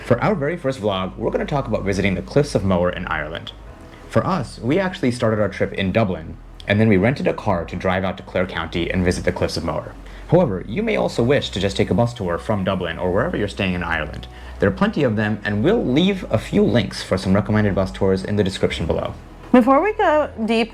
For our very first vlog, we're going to talk about visiting the Cliffs of Moher in Ireland. For us, we actually started our trip in Dublin, and then we rented a car to drive out to Clare County and visit the Cliffs of Moher. However, you may also wish to just take a bus tour from Dublin or wherever you're staying in Ireland. There are plenty of them, and we'll leave a few links for some recommended bus tours in the description below. Before we go deep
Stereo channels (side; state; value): both; identical; correlation 1.00